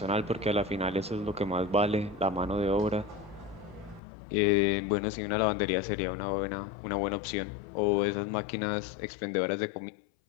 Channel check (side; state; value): right; drops out; at 4.0 s